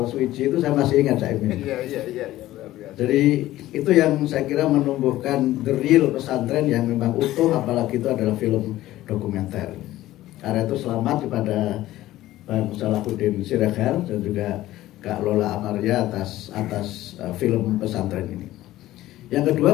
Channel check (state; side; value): quieter; right; 15.4 dB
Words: suci itu saya masih ingat saya ini. Iya. Jadi itu yang saya kira menumbuhkan the real pesantren yang memang utuh, apalagi itu adalah film dokumenter. Karena itu selamat kepada Bang Salahuddin Siregar dan juga Kak Lola Amaria atas film pesantren ini. Yang